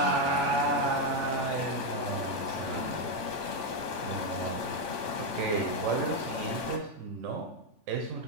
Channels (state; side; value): late; left; 3.5 ms